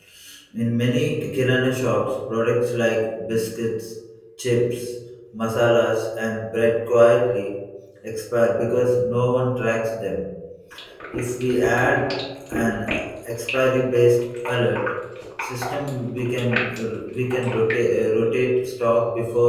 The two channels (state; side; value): identical; both; correlation 1.00